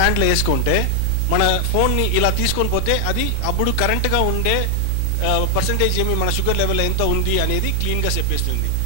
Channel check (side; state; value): both; different; correlation 0.00